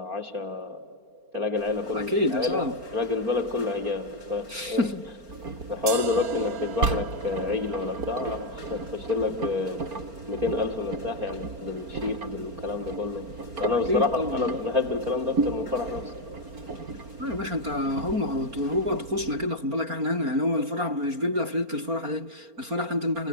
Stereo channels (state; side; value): late; left; 4.3 ms